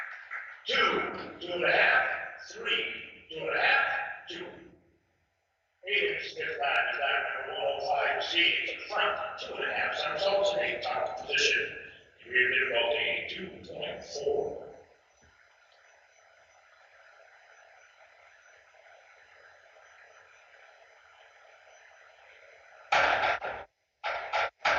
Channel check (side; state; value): both; identical; correlation 1.00